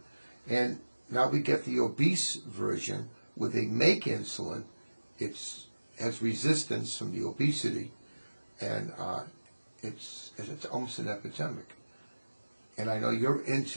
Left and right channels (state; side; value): inverted; both; correlation -1.00